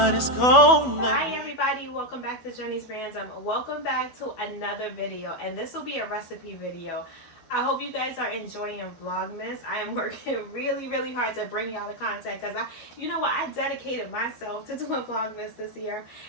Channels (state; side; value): late; right; 12 ms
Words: it's gonna be. Hi everybody, welcome back to Jenny's Random. Welcome back to another video, and this will be a recipe video. I hope you guys are enjoying Vlogmas. I am working really hard to bring y'all the content because you know what, I dedicated myself to doing Vlogmas this year,